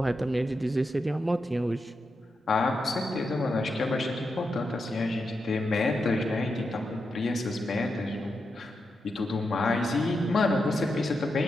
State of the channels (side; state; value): both; normal; correlation 0.86